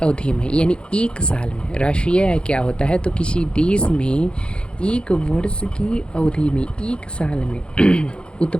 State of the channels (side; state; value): right; late; 0.054 ms